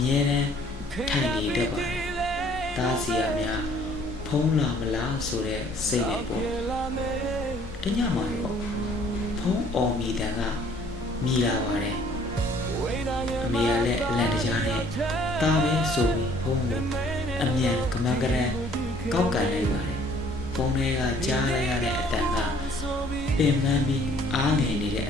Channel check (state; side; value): normal; both; correlation 0.58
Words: ြဲတမ်းထိုင်နေတတ်ပါတယ်။တားစီရများဖုန်းလာမလားဆိုတဲ့စိတ်နဲ့ပေါ့။တညမှာတော့ဖုန်းအော်မီတန်ကမြည်လာပါတယ်။ အမေကလည်းအလန့်တကြားနဲ့တားပဲဆိုပြီးဖုန်းကိုအမြန်ကမန်ကရန်ကောက်ကန်လိုက်ပါတယ်ဖုန်းထဲကကြားလိုက်ရတဲ့အတန်ကပင်ပန်းပြီးအားငယ်နေတဲ့